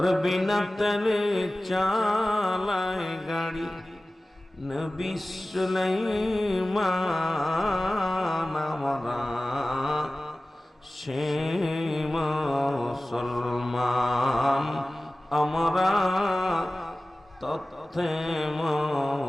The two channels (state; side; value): normal; both; correlation 0.97